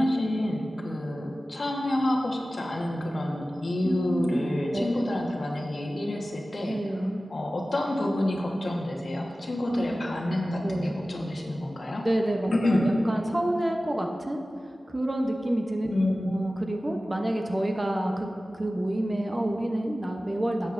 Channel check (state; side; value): normal; both; correlation 0.96